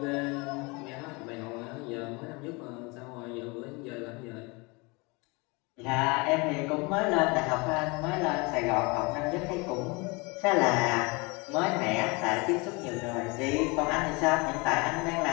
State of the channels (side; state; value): right; quieter; 27.4 dB